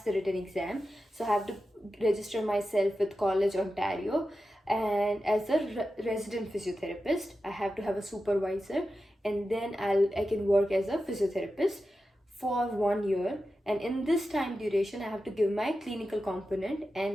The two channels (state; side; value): normal; both; correlation 0.91